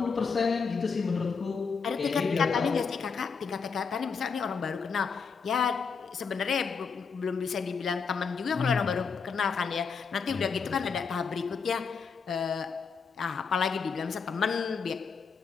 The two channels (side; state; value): right; quieter; 5.5 dB